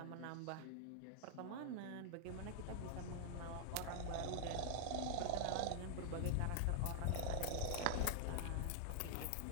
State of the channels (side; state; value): both; different; correlation -0.01